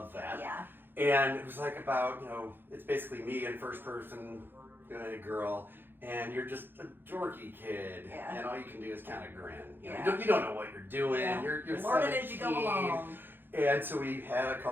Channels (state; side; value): late; left; 0.099 ms